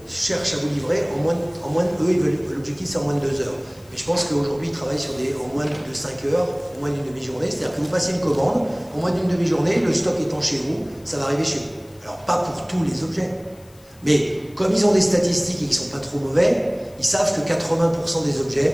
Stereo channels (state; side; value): noise; left; hiss, 27 dB below the sound